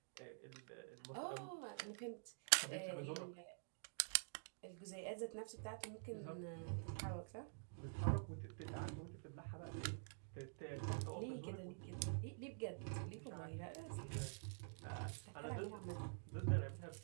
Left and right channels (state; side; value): silent; left; digital silence